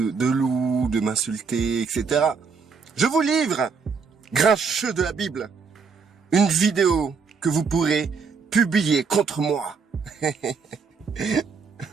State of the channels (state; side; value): quieter; left; 5.3 dB